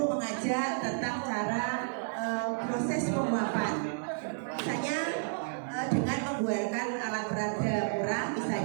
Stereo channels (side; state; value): left; silent; digital silence